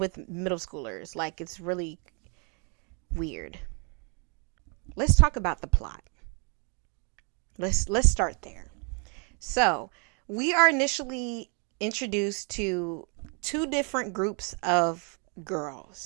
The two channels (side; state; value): left; quieter; 36.5 dB